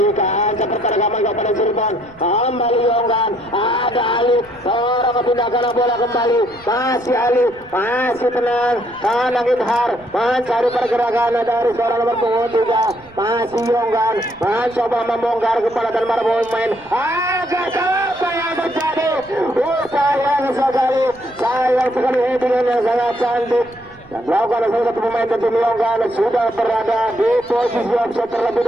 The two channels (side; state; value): right; noise; rumble, 25 dB below the sound